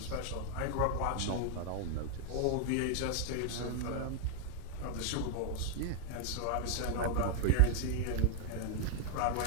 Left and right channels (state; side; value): different; both; correlation 0.00